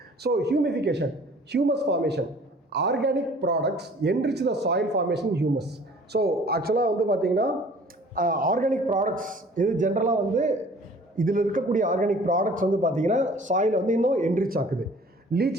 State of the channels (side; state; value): both; normal; correlation 0.50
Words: So humification, humus formation, organic products enrich the soil formation humus. So ஆக்சுவலாக வந்து பார்த்தீங்கன்னா ஆர்கானிக் ப்ராடக்ட்ஸ் இது ஜென்ரலாக வந்து இதில் இருக்கக்கூடிய ஆர்கானிக் ப்ராடக்ட்ஸ் வந்து பார்த்தீங்கன்னா சாயில் வந்து இன்னும் என்ரிச் ஆக்குது.